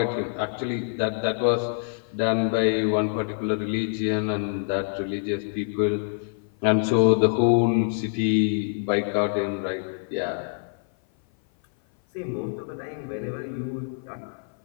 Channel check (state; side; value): silent; right; 56 dB below the other